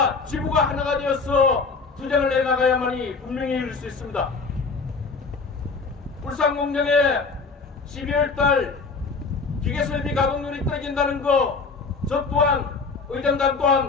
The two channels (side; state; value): right; quieter; 4.5 dB